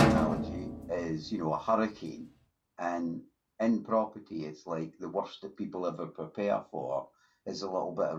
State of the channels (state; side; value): identical; both; correlation 1.00